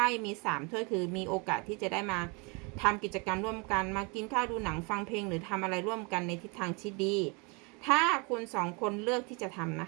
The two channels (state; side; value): quieter; left; 30.5 dB